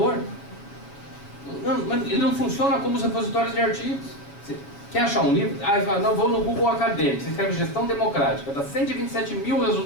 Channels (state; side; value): late; right; 7.0 ms